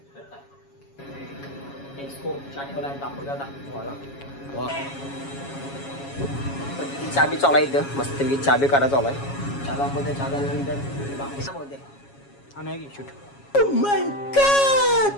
एक्सपो चाटोला दाखवू दादा चहा बी चालू आहे इथं मस्त चहा बी काढा चालू आहे चहा दाखवते चहा झाल्यानंतर बाकी सांगते आणि शूट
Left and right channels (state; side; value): late; right; 7.2 ms